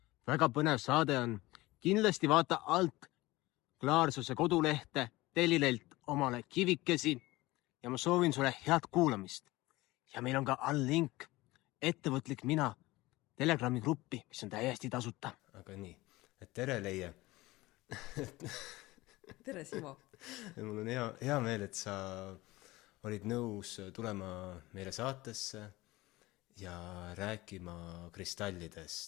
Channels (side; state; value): right; quieter; 19.8 dB